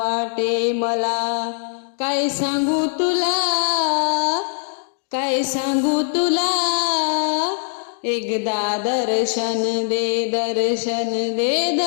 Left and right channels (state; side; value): silent; right; digital silence